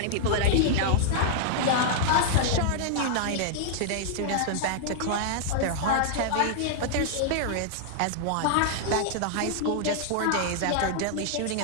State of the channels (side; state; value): both; different; correlation -0.01